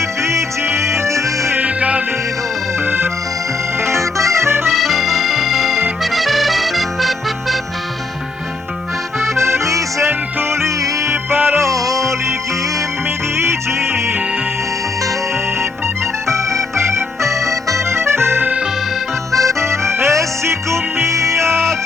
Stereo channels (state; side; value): quieter; right; 3.7 dB